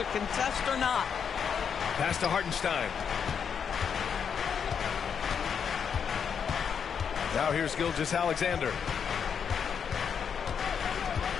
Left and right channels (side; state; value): right; quieter; 7.1 dB